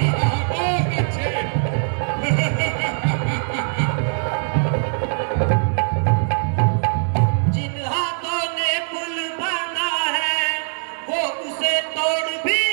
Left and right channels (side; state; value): left; silent; digital silence